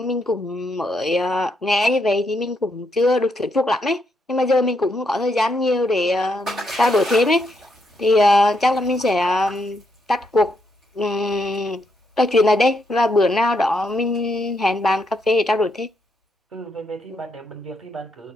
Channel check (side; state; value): both; normal; correlation 0.78